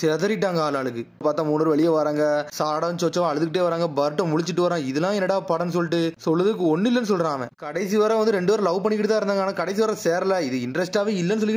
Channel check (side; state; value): both; identical; correlation 1.00